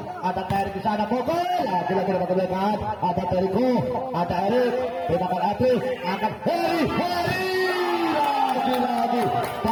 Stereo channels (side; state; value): both; identical; correlation 1.00